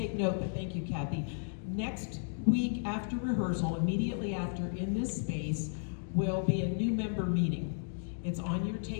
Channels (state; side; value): silent; right; digital silence